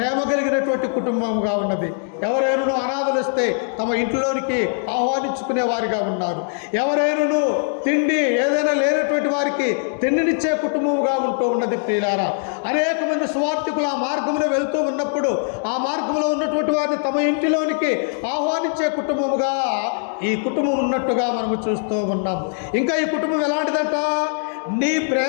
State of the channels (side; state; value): right; silent; digital silence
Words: కలిగినటువంటి కుటుంబంగా ఉన్నది. ఎవరైనా అనాథలు వస్తే తమ ఇంట్లోనికి ఆహ్వానించుకునే వారిగా ఉన్నారు. ఎవరైనా తిండి ఏదైనా లేనటువంటి వారికి తిండినిచ్చే కుటుంబముగా ఉంటూ ఉన్నది. ప్రియులారా, అనేక మంది సువార్థికులు ఆ మార్గంలో వెళ్తూ ఉన్నప్పుడు ఆ మార్గంలో ఉన్నటువంటి వారిని తమ ఇంటిలోనికి ఆహ్వానించే కుటుంబముగా ఈ కుటుంబం ఉన్నట్టుగా మనము చూస్తూ ఉన్నాం. ఇంకా ఈ కుటుంబం ఎలాంటిదంట? నీ